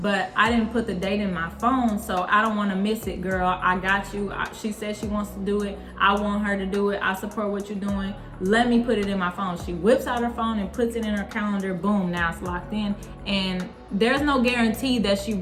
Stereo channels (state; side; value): identical; both; correlation 1.00